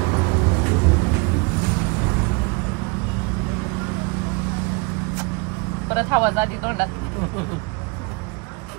परत हवा जाती तोंडात.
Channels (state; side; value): quieter; left; 28.8 dB